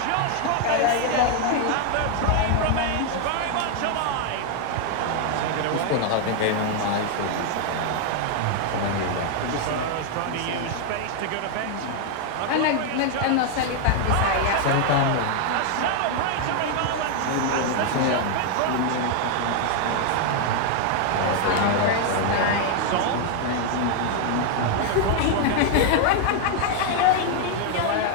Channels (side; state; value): both; different; correlation 0.00